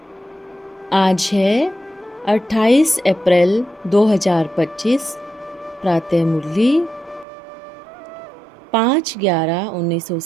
आज है 28 अप्रैल 2025। प्रातः मुरली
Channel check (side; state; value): left; drops out; at 7.2 s